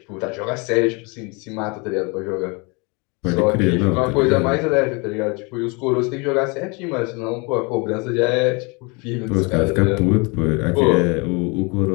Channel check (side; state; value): right; quieter; 29.7 dB